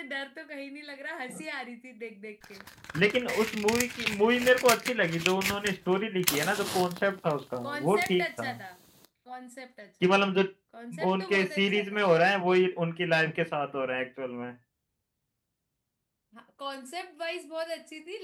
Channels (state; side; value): identical; both; correlation 1.00